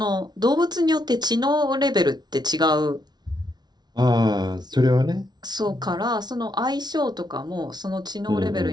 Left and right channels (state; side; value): late; left; 0.20 ms